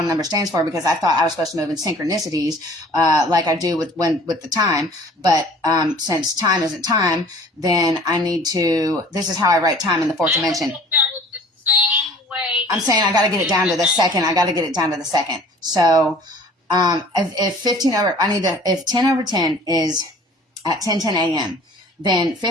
number stands for, because I thought I was supposed to move in synchronicities like I do with the time. But since time isn't time, then I need to. This is how I write time in the fourth dimension. I'm saying I got to get it down to the second. So if 10/10 is at 10:10 a.m., then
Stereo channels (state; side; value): normal; both; correlation 0.49